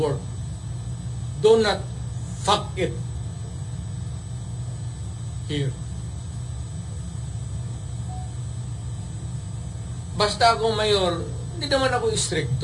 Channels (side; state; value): both; identical; correlation 1.00